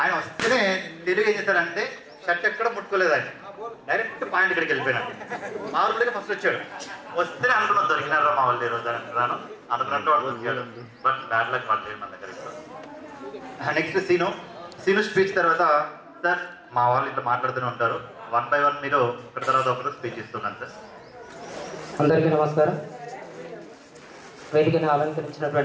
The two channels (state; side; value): identical; both; correlation 1.00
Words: ఆయన వస్తేనే తెలుగు ఏం చేశాడంటే షర్ట్ ఎక్కడ ముట్టుకోలేదు, ఆయన డైరెక్ట్ పాయింట్ ఇక్కడికి వెళ్ళిపోయినాడు. మా ఊళ్ళో ఫస్ట్ వచ్చాడు. వస్తేనే అనుకున్నాను దొరికినారా మా వాళ్ళు ఈరోజు అనుకున్నాను. అనుకున్నట్టు వాడు దొరికాడు. బట్ బ్యాడ్ లక్ వాళ్ళు లేదు మన దగ్గర. నెక్స్ట్ సీను స్పీచ్ తర్వాత, సార్ మా వాళ్ళు ఇట్లా మాట్లాడుతూనే ఉంటారు, 1 by 1 మీరు ఒకటి తర్వాత ఒకరు స్పీచ్ ఇస్తున్నాను సార్. అందరికీ నమస్కారం. వేదికను